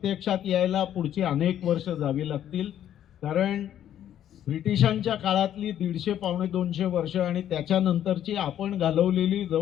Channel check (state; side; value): quieter; right; 10.9 dB